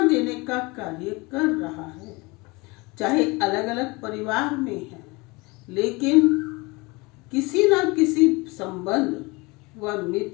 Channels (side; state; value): right; quieter; 25.1 dB